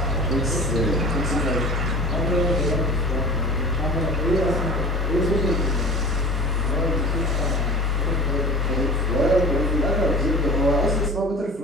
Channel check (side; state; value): both; normal; correlation 0.38